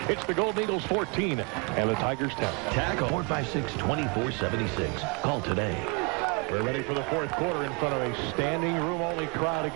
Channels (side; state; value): left; quieter; 32.0 dB